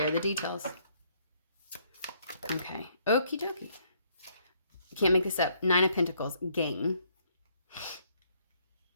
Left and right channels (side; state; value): both; inverted; correlation -0.68